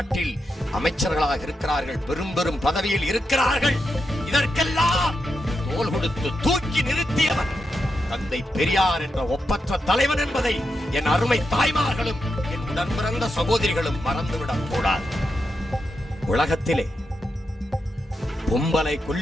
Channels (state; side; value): normal; both; correlation 0.86